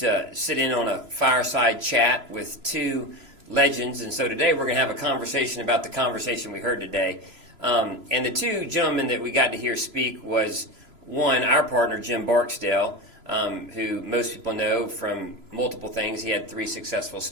to sit in on a fireside chat with two legends. And so today we're going to have a conversation about the conversation we heard today. And the two gentlemen that we got to hear speak was, one, our partner, Jim Barksdale, who most people know from multiple things. He had 3 successful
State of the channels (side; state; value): left; late; 3.0 ms